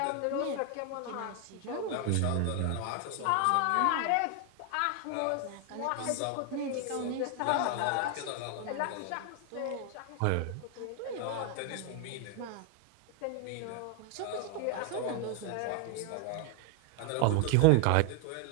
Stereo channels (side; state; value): both; different; correlation 0.00